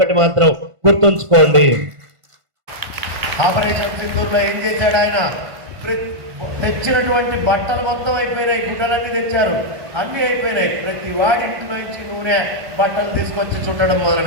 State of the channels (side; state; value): left; late; 1.5 ms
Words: మాత్రం గుర్తుంచుకోండి. ఆపరేషన్ సింధూర్లో ఏం చేశాడు ఆయన? తెచ్చినటువంటి బట్టలు మొత్తం అయిపోయినాయి, గుడ్డలన్నీ తెచ్చారు, అన్నీ అయిపోయినాయి. ప్రతి వాడింటి నుంచి నూనె బట్టలు తీసుకొచ్చి చుట్టడం